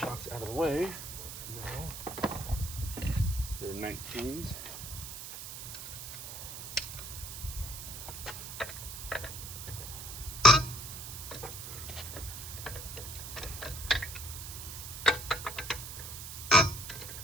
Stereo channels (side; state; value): right; noise; hiss, 8 dB below the sound